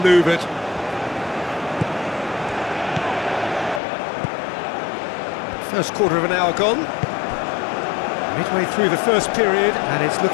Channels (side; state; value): right; drops out; at 3.8 s